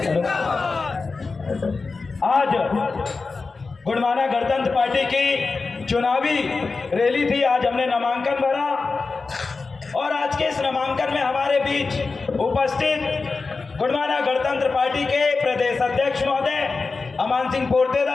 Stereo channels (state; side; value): quieter; right; 4.2 dB